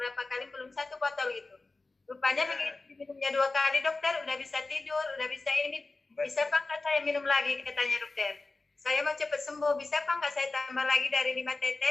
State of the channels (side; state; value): right; quieter; 3.4 dB